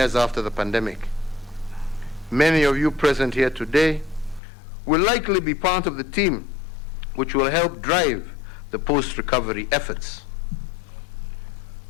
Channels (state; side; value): drops out; right; at 4.4 s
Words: after the pandemic. Many of you present here today will likely be part of the team which will help drive the post-recovery efforts.